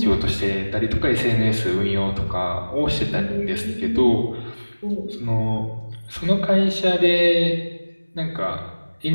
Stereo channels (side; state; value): both; inverted; correlation -1.00